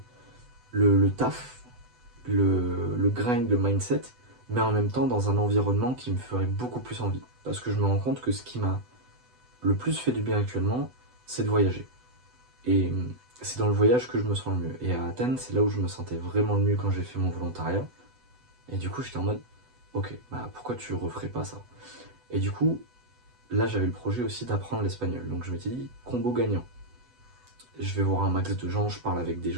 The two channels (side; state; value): left; late; 8.1 ms